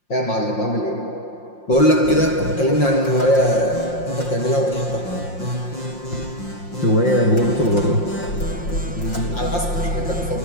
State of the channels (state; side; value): late; right; 5.7 ms